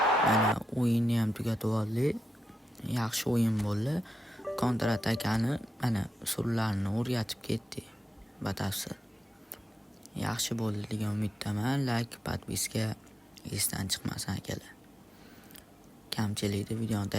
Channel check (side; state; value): both; normal; correlation 0.88